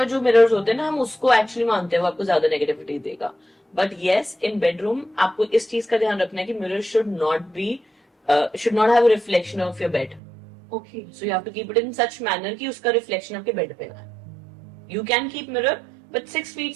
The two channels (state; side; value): drops out; left; at 10.2 s